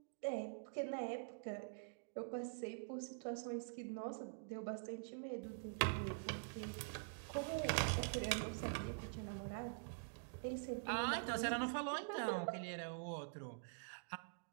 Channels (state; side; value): silent; left; digital silence